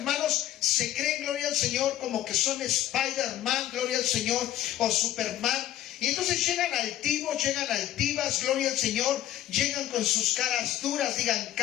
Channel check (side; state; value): right; quieter; 13.0 dB